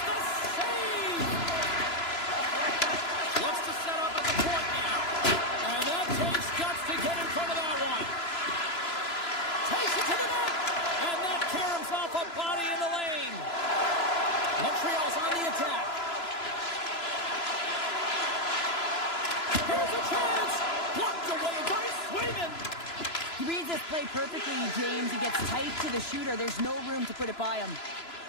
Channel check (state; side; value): late; right; 3.0 ms